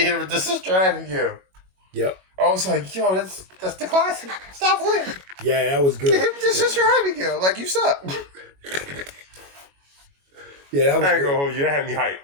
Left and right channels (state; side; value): late; left; 21 ms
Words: hit it with the Sister Abigail. Yep. I was like, yo, that's the classic. Stop playing. Yeah, that was good. Give him the Sister Abigail. Like, you suck. Yeah, that was I ain't gonna hold you. That had me